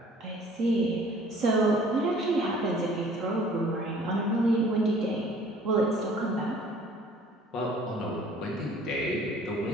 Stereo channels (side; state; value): both; normal; correlation 0.53